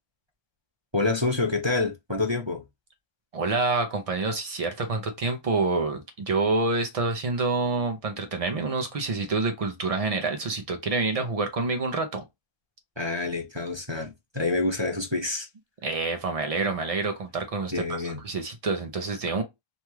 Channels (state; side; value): late; left; 1.6 ms